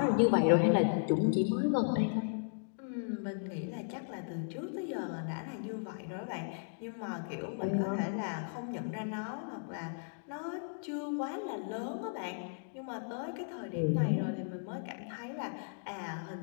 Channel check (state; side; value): silent; right; digital silence